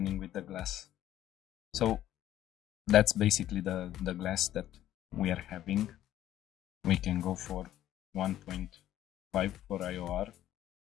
with the glass. So that's basically the glass that we are having. We can go for 1.5 for IOR.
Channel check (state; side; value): quieter; right; 12.6 dB